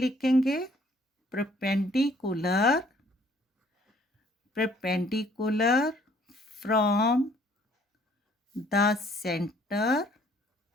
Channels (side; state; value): both; normal; correlation 0.61